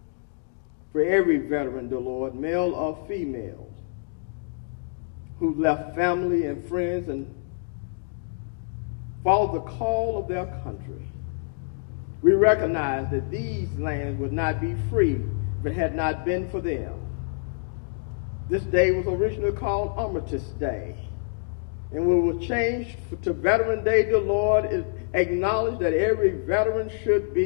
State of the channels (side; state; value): right; silent; digital silence